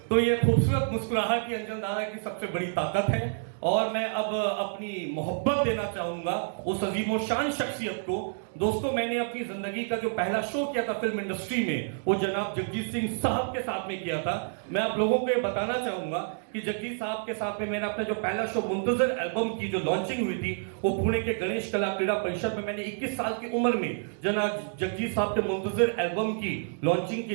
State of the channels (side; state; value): left; silent; digital silence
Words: तो ये खूबसूरत मुस्कुराहट ही अंजन दादा की सबसे बड़ी ताकत है। और मैं अब अपनी मोहब्बत देना चाहूंगा उस अजीमो शान शख्सियत को। दोस्तों मैंने अपनी जिंदगी का जो पहला शो किया था फिल्म इंडस्ट्री में, वो जनाब जगजीत सिंह साहब के साथ में किया था। मैं आप लोगों को ये बताना चाहूंगा कि जगजीत साहब के साथ में मेरा अपना जो पहला शो मुंतजर एल्बम की जो लॉन्चिंग हुई थी, वो पुणे के गणेश कला क्रीड़ा परिषद में मैंने 21 साल की उम्र में जनाब जगजीत साहब के मुंतजर एल्बम की लॉन्चिंग की